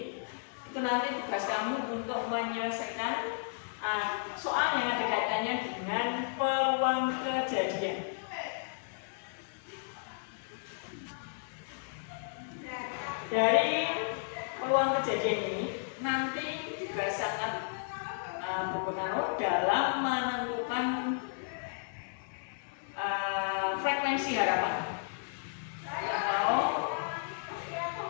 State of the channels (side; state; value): right; silent; digital silence